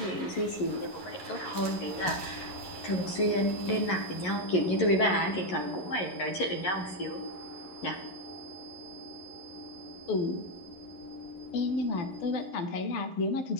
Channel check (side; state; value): right; late; 11 ms